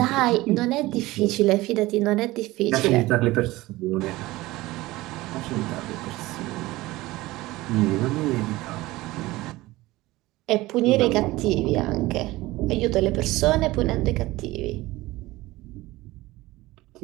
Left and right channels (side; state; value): left; quieter; 18.9 dB